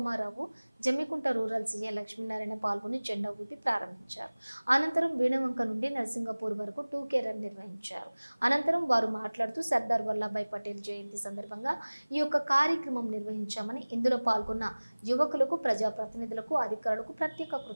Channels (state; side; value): inverted; both; correlation -1.00